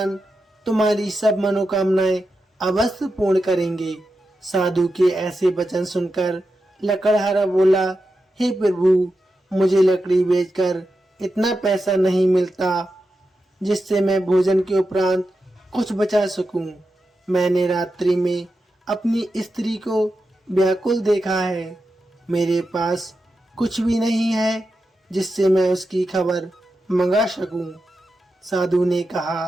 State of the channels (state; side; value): normal; both; correlation 0.89